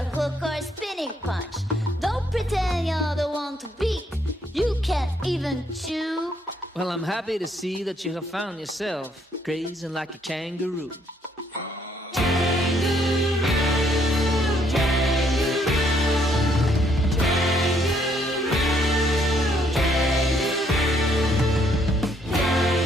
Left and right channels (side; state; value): both; normal; correlation 0.69